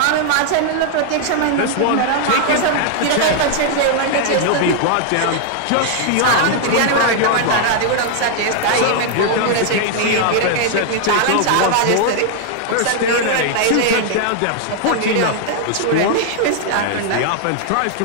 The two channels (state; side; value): different; both; correlation 0.00